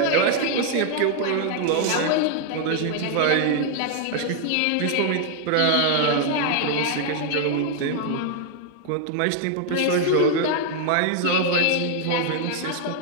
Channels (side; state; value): both; different; correlation 0.00